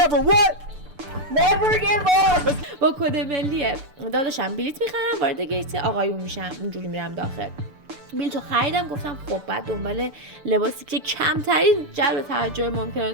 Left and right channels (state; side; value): late; left; 6.8 ms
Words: never what? Never give up. با کد ملی داداشم بلیت میخرم، وارد گیت آقایون میشم، اونجوری میرم داخل. بلیتو خریدم. گفتم خب بعد دنبال لباسی که کمترین جلب توجه ممکنه